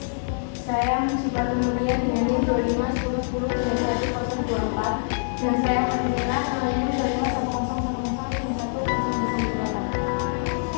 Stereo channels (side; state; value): right; silent; 62 dB below the other